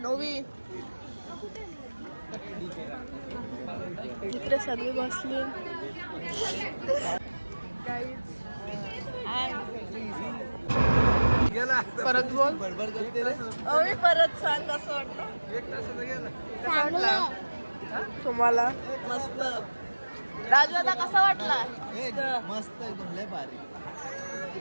नोवी इकडे सगळी बसली. गाईज परत बोल. मी परत सांग कसं वाटलं तुम्हाला. मस्त. राजू आता कसा वाटला. मस्त एकदम लय भारी.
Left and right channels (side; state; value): both; inverted; correlation -1.00